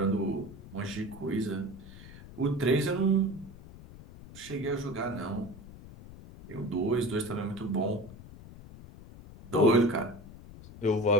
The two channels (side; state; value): left; noise; rumble, 17 dB below the sound